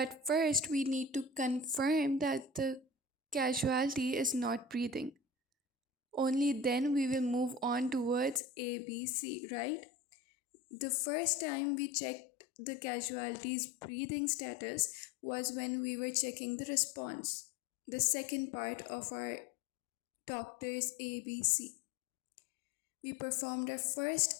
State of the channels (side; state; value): right; drops out; at 8.4 s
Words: first, we need to confirm that the casualty is not breathing. Only then we will move on towards ABC, right? The first time we checked the casualty's breathing status was when we were checking the response, the second part of our doctor's ABC. We performed our